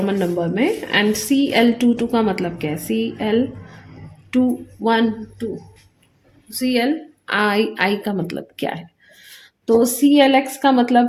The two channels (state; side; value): identical; both; correlation 1.00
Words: नंबर में, एंड CL22 का मतलब क्या है, CL212, CLI का मतलब क्या है। तो CL(x) का